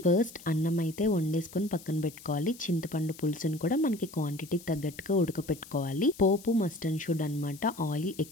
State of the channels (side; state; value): left; noise; hiss, 19 dB below the sound